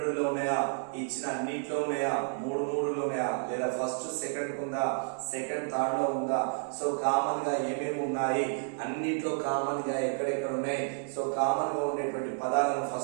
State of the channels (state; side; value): silent; left; 57 dB below the other